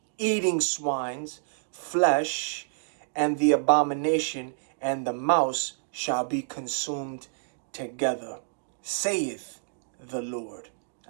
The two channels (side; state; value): left; silent; digital silence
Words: eating swine's flesh, and the abomination and the mouse shall be consumed together, saith the Lord.